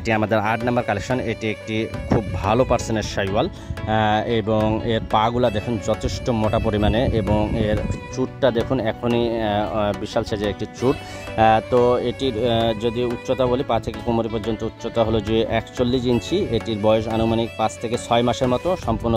আমাদের 8 নাম্বার কালেকশন। এটি একটি খুব ভালো পার্সেন্টের শাহিওয়াল এবং এর পাগুলা দেখুন যথেষ্ট মোটা পরিমাণে এবং এর চুটটা দেখুন এখনই বিশাল সাইজের একটি চুট। তো এটির যদি উচ্চতা বলি পা থেকে কোমরে পর্যন্ত উচ্চতা হলো যে 41 ইঞ্চি। এটির বয়স আনুমানিক 5 থেকে 6 মাসের মতো। সম্পূর্ণ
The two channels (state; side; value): identical; both; correlation 1.00